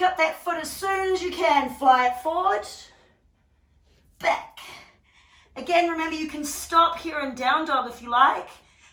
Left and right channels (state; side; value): identical; both; correlation 1.00